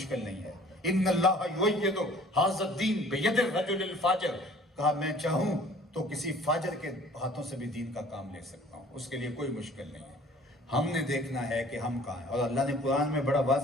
نہیں ہے۔ ان اللہ یؤید ھذا الدین بید الرجل الفاجر، کہا میں چاہوں تو کسی فاجر کے ہاتھوں سے بھی دین کا کام لے سکتا ہوں، اس کے لیے کوئی مشکل نہیں ہے۔ ہم نے دیکھنا ہے کہ ہم کہاں ہیں، اور اللہ نے قرآن میں بڑا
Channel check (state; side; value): normal; both; correlation 0.51